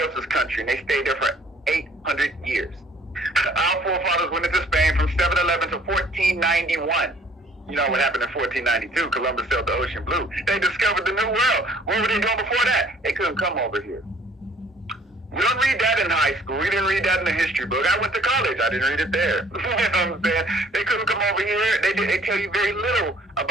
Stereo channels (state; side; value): normal; both; correlation 0.57